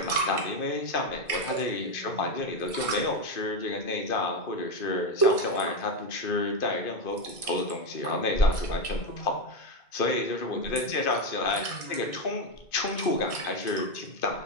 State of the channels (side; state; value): right; late; 2.2 ms